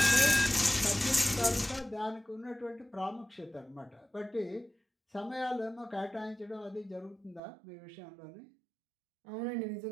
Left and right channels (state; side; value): drops out; left; at 7.4 s